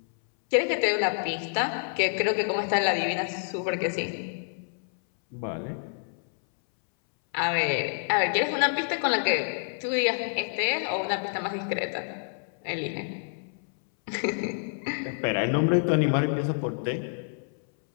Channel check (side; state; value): right; silent; 60 dB below the other